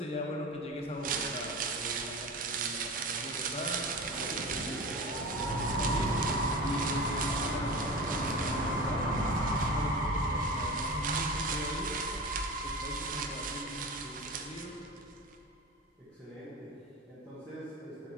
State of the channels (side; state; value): both; normal; correlation 0.30